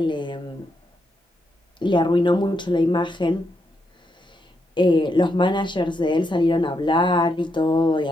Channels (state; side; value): normal; both; correlation 0.81